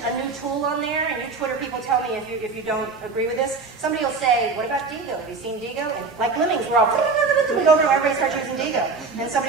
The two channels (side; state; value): left; quieter; 4.3 dB